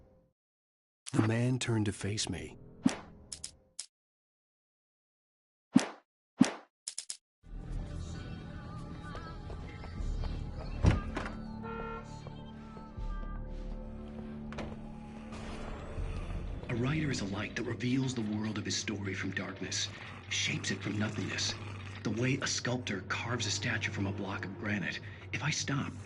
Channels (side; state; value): both; identical; correlation 1.00